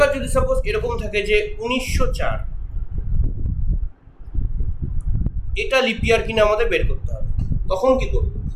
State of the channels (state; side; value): identical; both; correlation 1.00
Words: যদি সাপোজ এরকম থাকে যে 1904, এটা লিপ ইয়ার কিনা আমাদের বের করতে হবে। তখন কি করব?